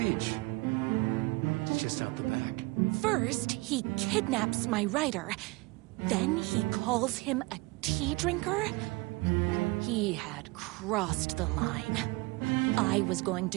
It's just out the back. First, he kidnaps my rider. Then he calls him a tea drinker. He had crossed the line. I was going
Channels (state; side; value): quieter; left; 24.2 dB